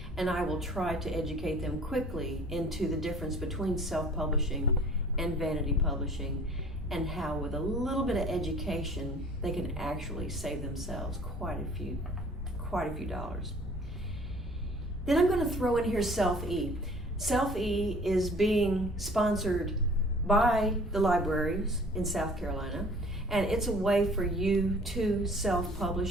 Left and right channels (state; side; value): normal; both; correlation 0.50